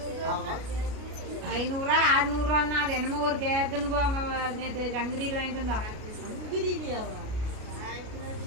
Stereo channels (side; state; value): left; late; 33 ms